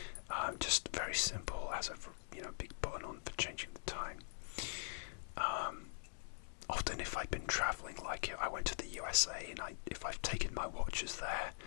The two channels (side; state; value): right; silent; digital silence